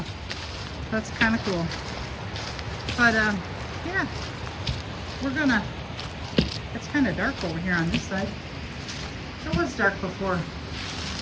That's kind of cool. But yeah, it's kind of dark over here on this side. It was dark before.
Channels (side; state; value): both; identical; correlation 1.00